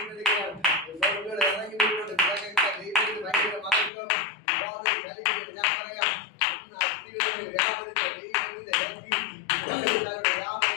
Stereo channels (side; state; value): right; drops out; at 3.9 s